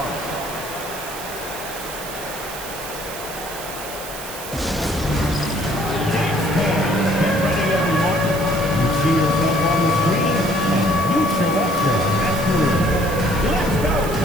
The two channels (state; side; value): noise; right; hiss, 11 dB below the sound